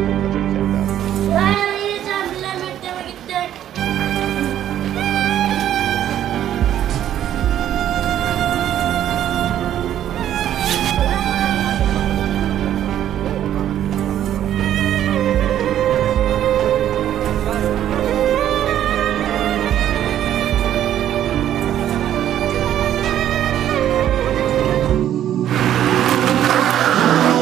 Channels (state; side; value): quieter; left; 11.2 dB